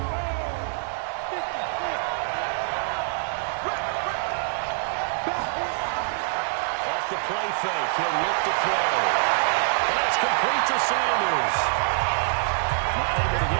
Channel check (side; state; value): left; silent; digital silence